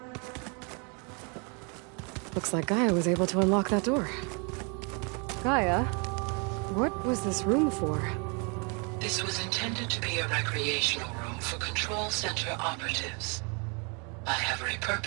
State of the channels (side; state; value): left; quieter; 34.4 dB